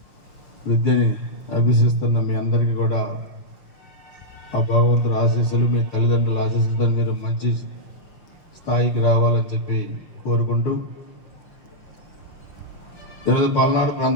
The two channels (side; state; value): right; late; 6.1 ms